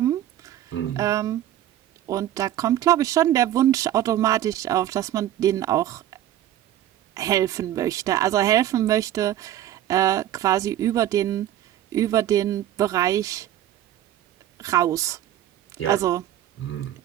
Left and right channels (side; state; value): left; quieter; 12.4 dB